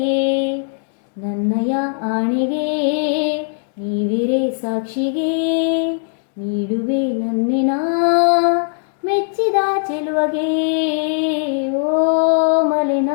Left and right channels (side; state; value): right; silent; 67 dB below the other